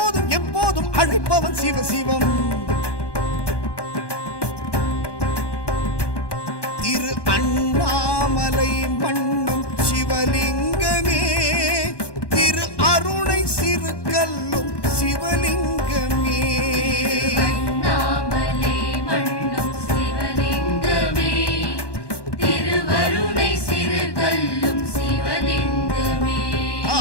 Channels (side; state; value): right; late; 1.1 ms